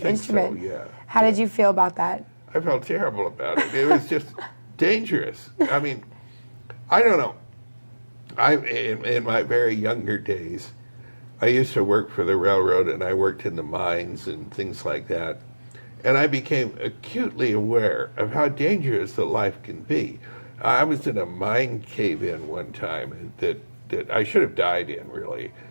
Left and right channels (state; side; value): inverted; both; correlation -1.00